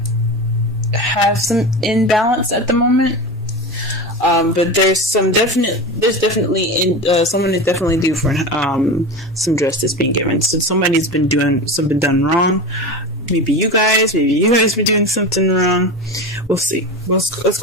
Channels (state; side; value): normal; both; correlation 0.26